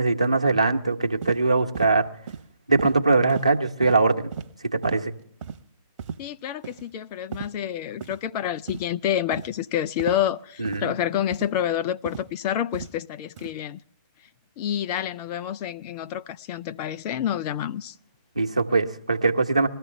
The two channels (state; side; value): inverted; both; correlation -0.60